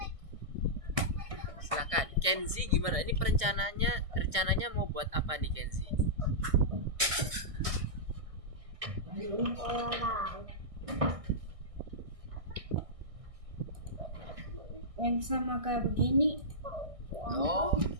Silakan, Kenzi gimana? Ini rencananya mau buat apa nih Kenzi? Orang. Yang sama kayak begini.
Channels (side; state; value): left; late; 1.6 ms